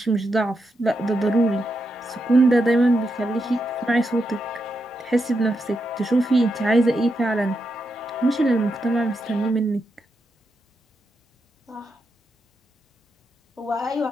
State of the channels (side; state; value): both; normal; correlation 0.85